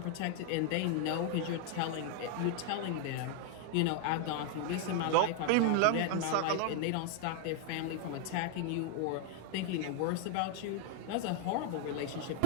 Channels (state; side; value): different; both; correlation 0.00